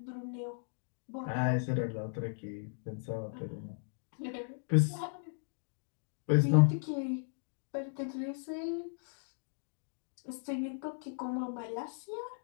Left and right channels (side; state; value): right; silent; digital silence